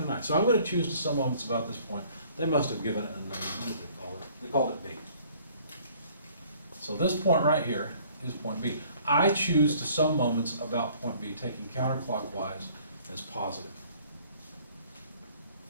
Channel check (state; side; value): inverted; both; correlation -0.57